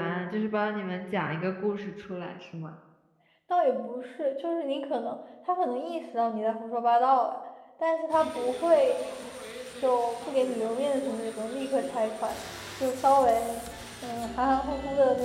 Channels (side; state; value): both; identical; correlation 1.00